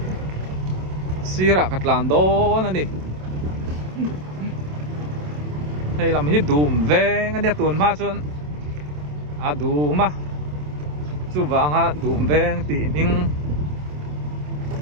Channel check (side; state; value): left; late; 27 ms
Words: sira katlan don ani hei lam hi dum veng ania tun ma chun a duma chu wanga dum veng ti ning